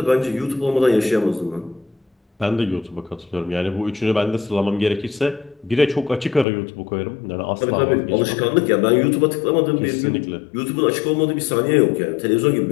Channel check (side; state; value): right; drops out; at 6.5 s